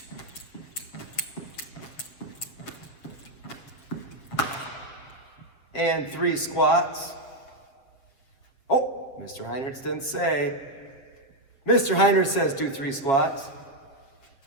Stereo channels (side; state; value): right; late; 7.3 ms